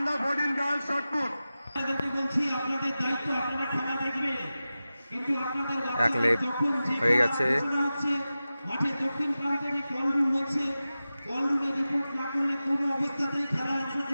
14 girls shot put. এক লেপ হয়ে গেছে। মাঠে দক্ষিণ প্রান্তে কলরুম হচ্ছে, কলরুমে রিপোর্ট না করলে কোনো অবস্থাতেই খেলায়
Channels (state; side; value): inverted; both; correlation -0.95